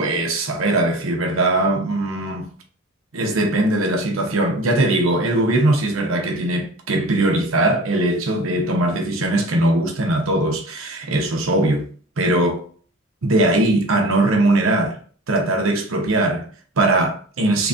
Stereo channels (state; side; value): normal; both; correlation 0.39